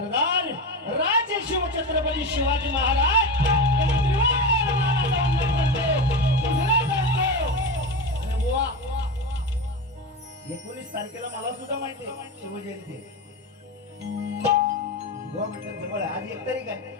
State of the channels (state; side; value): normal; both; correlation 0.21